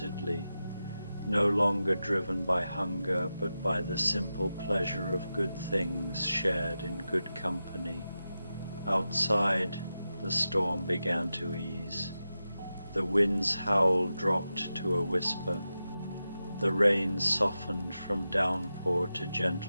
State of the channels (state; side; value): inverted; both; correlation -0.91